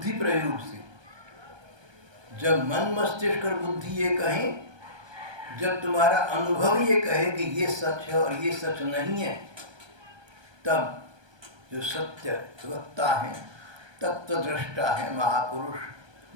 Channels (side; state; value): left; late; 1.2 ms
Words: प्रयोग से। जब मन मस्तिष्क और बुद्धि ये कहें, जब तुम्हारा अनुभव ये कहे कि ये सच है और ये सच नहीं है, तब जो सत्य वक्ता है, तत्वदृष्टा है, महापुरुष,